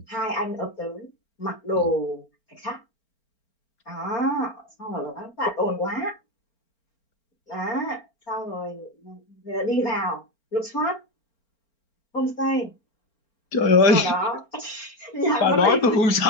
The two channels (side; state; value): right; late; 4.4 ms